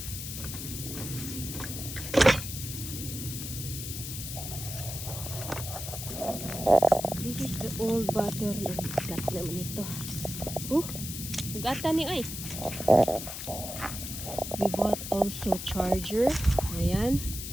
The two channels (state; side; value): noise; left; hiss, 7 dB below the sound